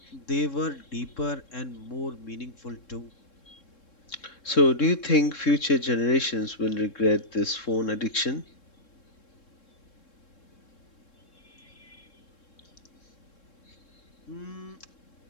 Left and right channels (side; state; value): right; late; 3.7 ms